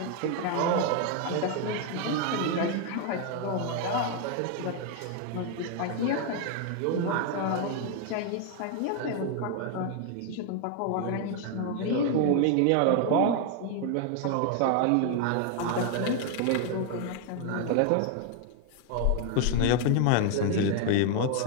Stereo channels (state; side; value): different; both; correlation 0.00